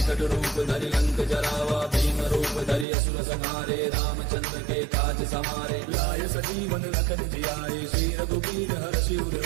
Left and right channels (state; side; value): drops out; left; at 2.9 s